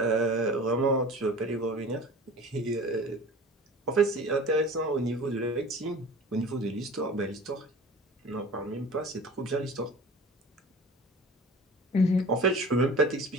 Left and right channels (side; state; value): both; normal; correlation 0.40